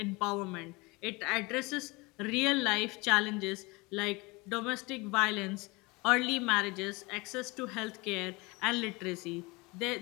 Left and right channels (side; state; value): right; quieter; 25.2 dB